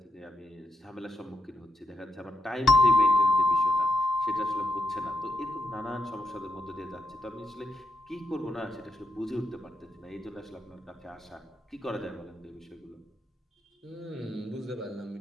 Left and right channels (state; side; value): normal; both; correlation 0.82